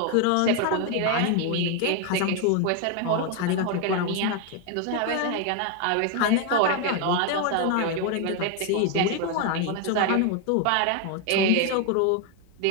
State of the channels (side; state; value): both; different; correlation 0.01